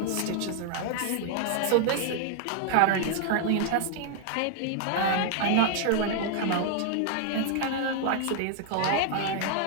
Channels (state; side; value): different; both; correlation 0.00